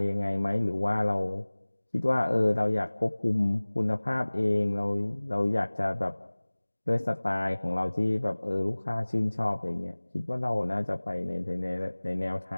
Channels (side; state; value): both; inverted; correlation -1.00